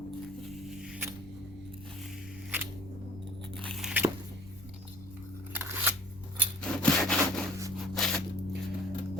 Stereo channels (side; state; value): right; noise; rumble, 18 dB below the sound